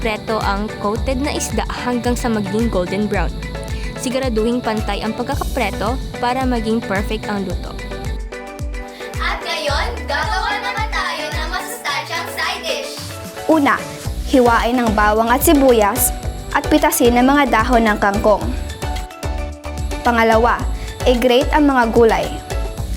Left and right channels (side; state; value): both; identical; correlation 1.00